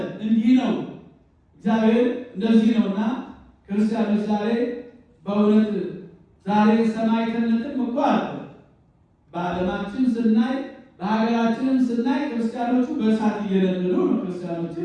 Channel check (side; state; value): both; identical; correlation 1.00